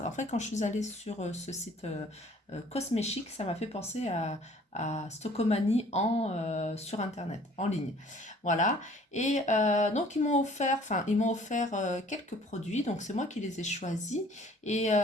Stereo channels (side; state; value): both; normal; correlation 0.54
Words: En fait, quand je suis allée sur ce site Cosmechic, ça m'a fait penser à Stockomanie sur Internet, en ligne. Voilà. Et donc, ils m'ont offert quelques produits. Donc, c'est moi qui les ai choisis.